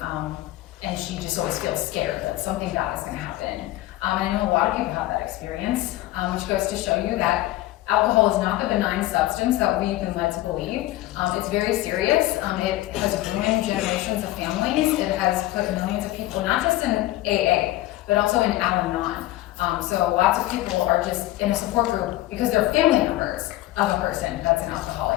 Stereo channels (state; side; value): quieter; right; 16.3 dB